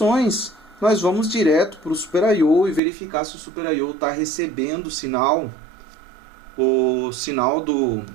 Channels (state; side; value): drops out; left; at 2.8 s